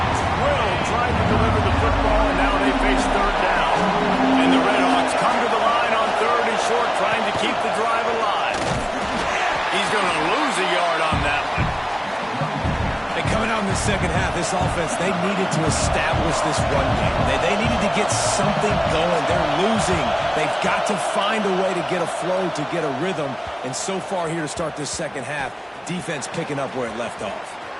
drilled trying to deliver the football, and now they face third down. And the Redhawks come to the line on third and short, trying to keep the drive alive. He's going to lose a yard on that one. Coming out in the second half, this offense, they needed to establish this run game. They needed to get something going. They're losing. They've got to find a way to get a flow, to get a rhythm. And so far here to start this second half, defense picking up where it left off.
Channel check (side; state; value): both; identical; correlation 1.00